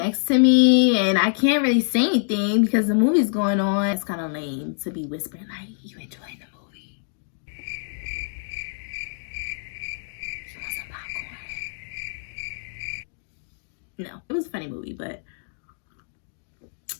to me and I can't really say anything because the movie's going on. It's kind of lame to be whispering like, you enjoying the movie? You want some popcorn? No, it was a funny movie, but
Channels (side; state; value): right; silent; digital silence